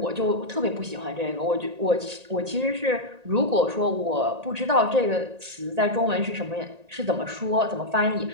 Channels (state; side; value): late; left; 1.8 ms